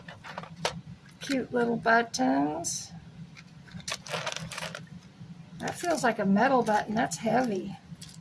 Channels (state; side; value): identical; both; correlation 1.00